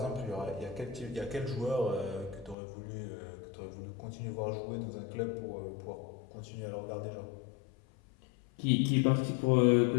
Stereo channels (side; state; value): right; drops out; at 2.6 s